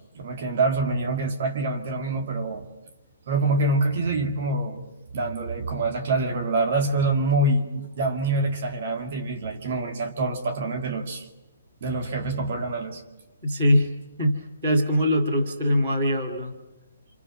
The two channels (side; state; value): both; inverted; correlation -0.43